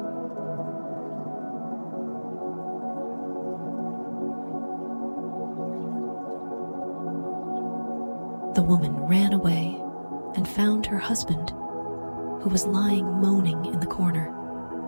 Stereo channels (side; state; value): both; inverted; correlation -1.00